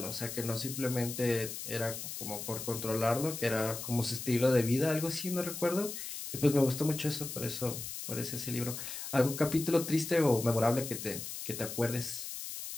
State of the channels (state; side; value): noise; left; hiss, 7 dB below the sound